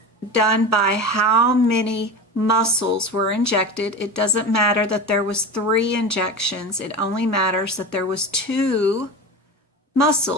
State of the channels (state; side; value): normal; both; correlation 0.28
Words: done by how many muscles were injected. It doesn't matter that there was 3 injections. It only matters that there was 2